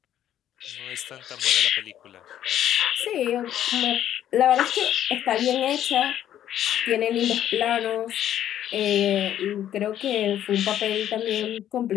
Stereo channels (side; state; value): right; quieter; 11.2 dB